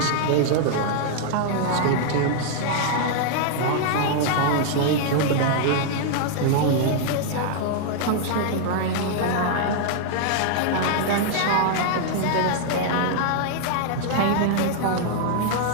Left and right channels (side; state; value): both; different; correlation -0.01